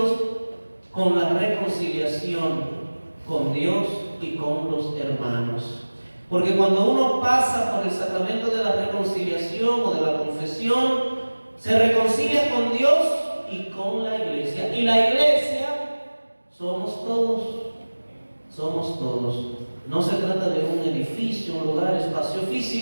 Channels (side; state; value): both; inverted; correlation -1.00